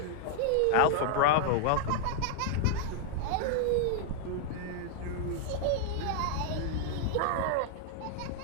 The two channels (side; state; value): both; different; correlation 0.00